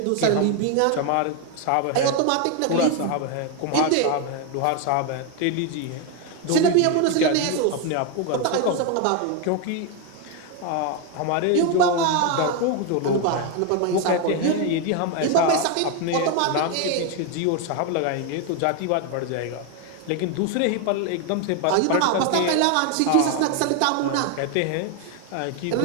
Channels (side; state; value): both; different; correlation 0.01